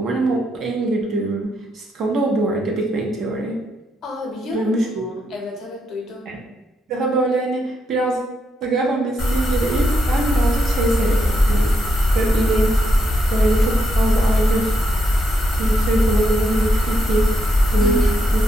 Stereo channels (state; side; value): normal; both; correlation 0.79